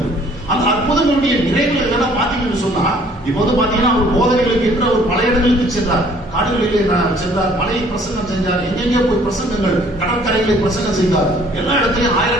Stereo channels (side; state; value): both; normal; correlation 0.58